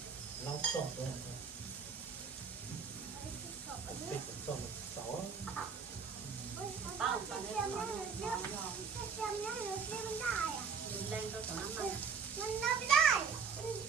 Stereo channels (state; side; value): quieter; left; 5.8 dB